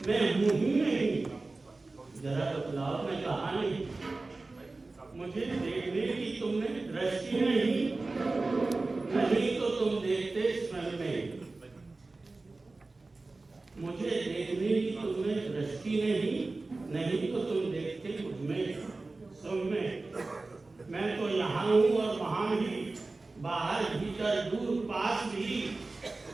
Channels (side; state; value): left; quieter; 3.4 dB